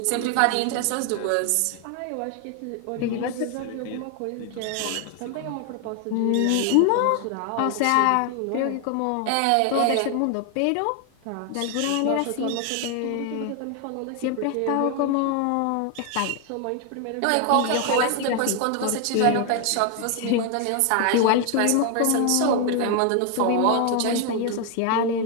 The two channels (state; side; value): different; both; correlation 0.00